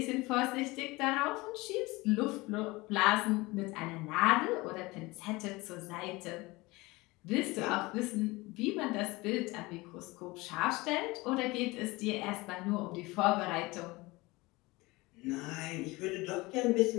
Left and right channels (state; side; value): quieter; right; 22.3 dB